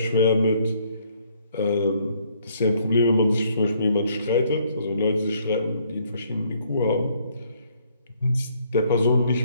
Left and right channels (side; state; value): both; inverted; correlation -0.66